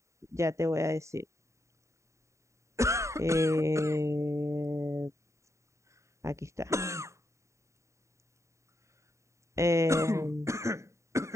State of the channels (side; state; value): left; late; 0.14 ms